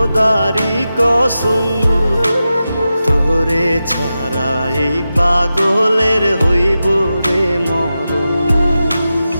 কসম, তোরে ছাড়া এই পাগলের হইব রে মরণ।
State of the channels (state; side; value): inverted; both; correlation -0.92